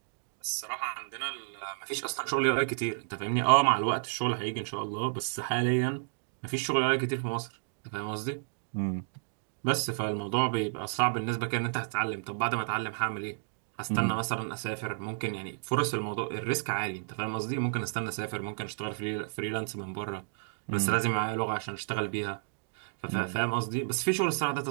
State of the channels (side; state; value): left; silent; digital silence